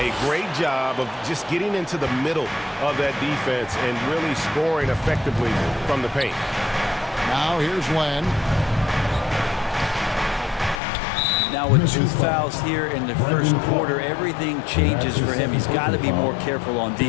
a great job of just getting into the middle of that defense and really scoring effectively from the paint. Now here's Len. Now with 2 fouls here in the first quarter, everything changes for him. He's got to be more careful on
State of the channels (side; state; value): right; drops out; at 10.8 s